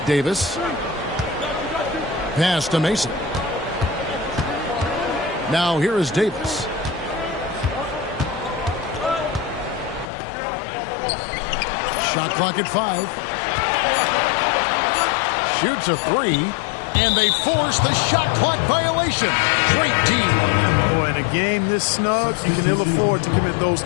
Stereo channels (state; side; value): drops out; right; at 10.1 s